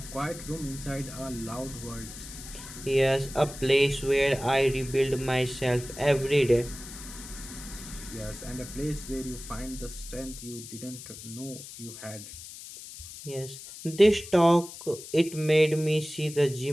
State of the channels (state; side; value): noise; left; hiss, 13 dB below the sound